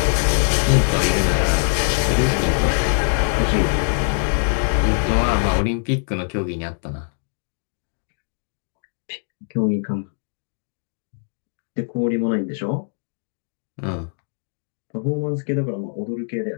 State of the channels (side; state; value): right; silent; digital silence